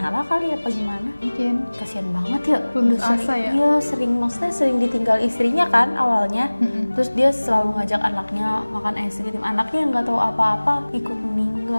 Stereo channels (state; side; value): inverted; both; correlation -1.00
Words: kali apa gimana? Mungkin. Kasian banget ya, Putus udah sering, asa ya? iya maksudnya sering ditinggal istrinya kan awalnya. Terus dia selalu ngajak anaknya makan es krim, anaknya yang nggak tahu apa-apa ikut